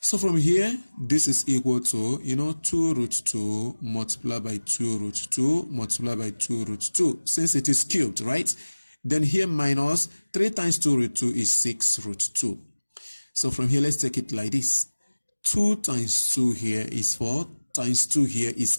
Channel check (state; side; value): inverted; both; correlation -1.00